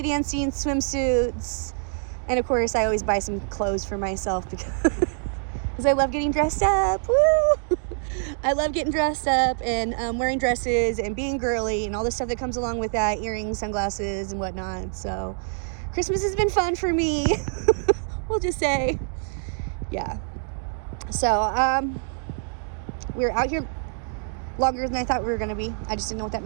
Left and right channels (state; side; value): silent; left; 59 dB below the other